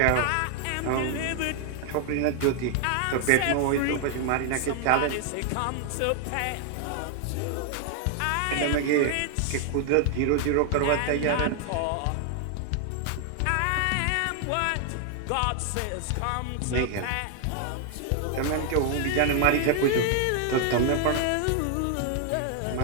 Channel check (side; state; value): both; different; correlation 0.00